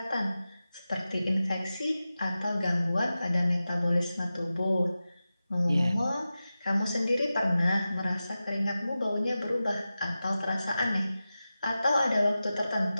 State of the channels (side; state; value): both; inverted; correlation -0.94